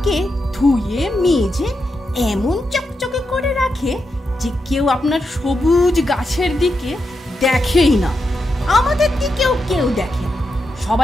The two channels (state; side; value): normal; both; correlation 0.86